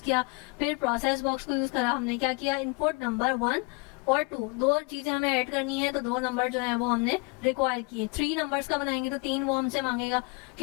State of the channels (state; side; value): quieter; right; 30.2 dB